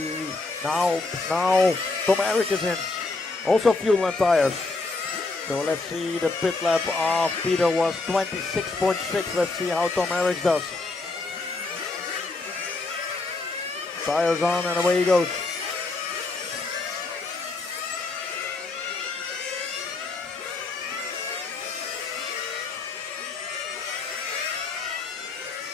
now Tom Eric is in. Also fuel and tires. So let's see, the pit lap of Peter was 26.6. Let's see how Tom Eric does. Tires on and away he goes.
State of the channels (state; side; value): quieter; right; 3.5 dB